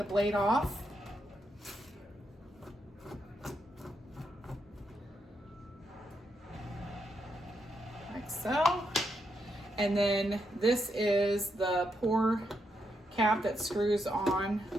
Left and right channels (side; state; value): both; normal; correlation 0.81